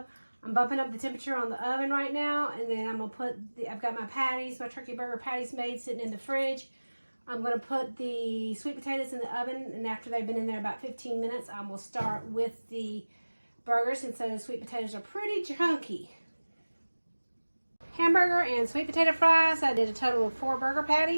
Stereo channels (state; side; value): inverted; both; correlation -1.00